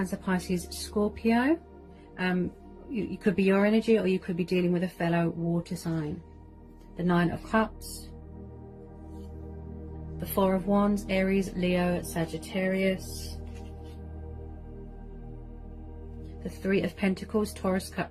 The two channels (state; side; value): identical; both; correlation 1.00